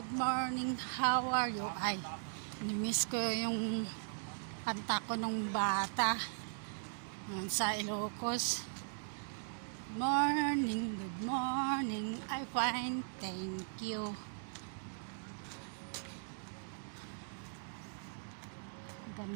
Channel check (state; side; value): silent; left; digital silence